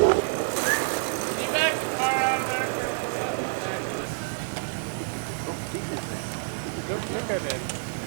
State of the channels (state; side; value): silent; left; digital silence